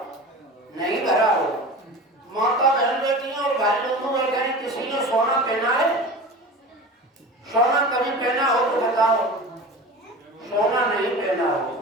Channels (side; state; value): both; normal; correlation 0.34